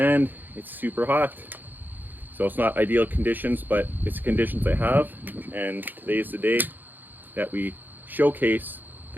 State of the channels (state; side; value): late; left; 0.088 ms